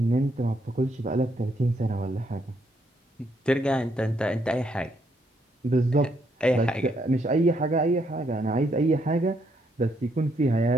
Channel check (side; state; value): both; normal; correlation 0.74